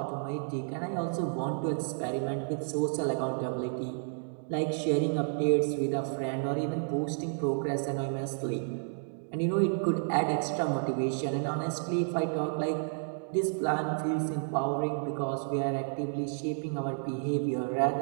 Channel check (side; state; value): left; silent; digital silence